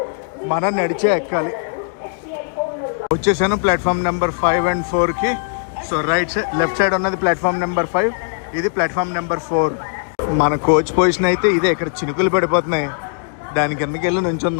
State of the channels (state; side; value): silent; right; digital silence